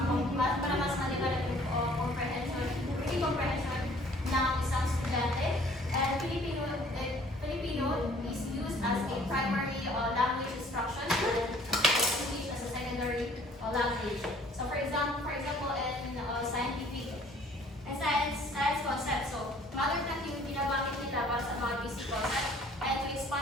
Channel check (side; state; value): both; normal; correlation 0.56